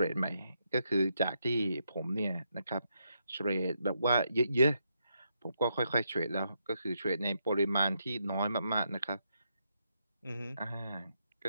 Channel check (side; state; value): both; inverted; correlation -0.80